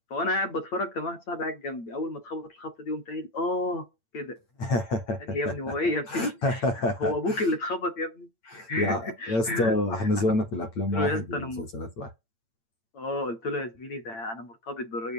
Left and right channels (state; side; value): late; right; 8.8 ms